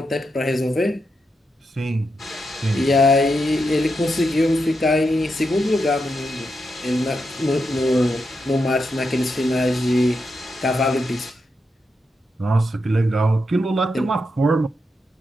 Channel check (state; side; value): normal; both; correlation 0.85